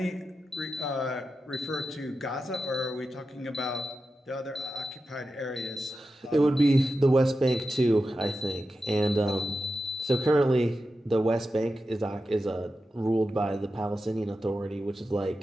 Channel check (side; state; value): both; normal; correlation 0.91